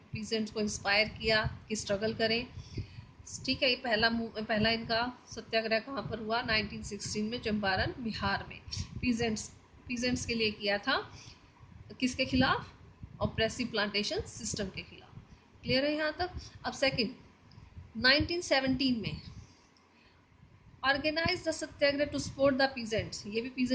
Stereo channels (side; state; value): both; identical; correlation 1.00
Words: पीजेंट्स को इंस्पायर किया कि स्ट्रगल करें। ठीक है, ये पहला इनका सत्याग्रह कहाँ पर हुआ? 1916 में चंपारण बिहार में। पीजेंट्स के लिए किया था। किसके खिलाफ? ऑप्रेसिव प्लांटेशन सिस्टम के खिलाफ। क्लियर है यहाँ तक? अब सेकंड, 1917 में organise the Satyagraha to support the peasants. ये भी